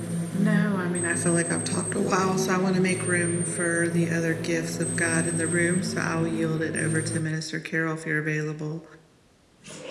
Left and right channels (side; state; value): both; identical; correlation 1.00